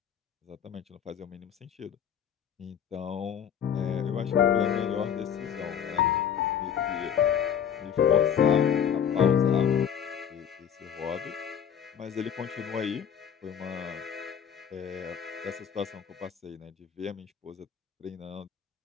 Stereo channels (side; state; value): right; quieter; 8.4 dB